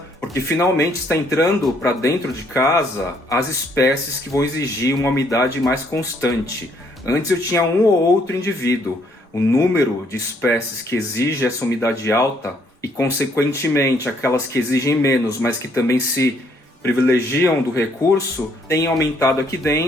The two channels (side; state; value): both; normal; correlation 0.68